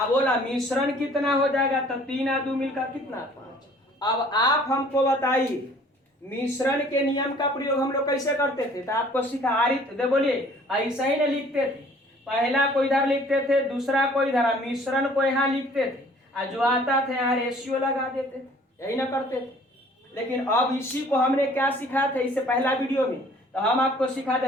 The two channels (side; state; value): both; normal; correlation 0.54